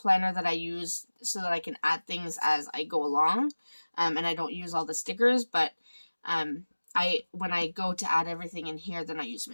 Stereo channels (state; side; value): inverted; both; correlation -1.00